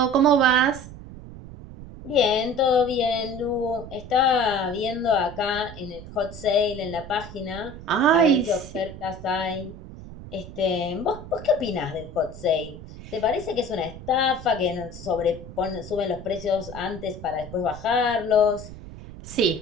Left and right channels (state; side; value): noise; right; rumble, 14 dB below the sound